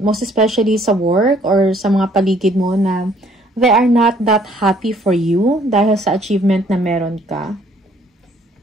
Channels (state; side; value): normal; both; correlation 0.62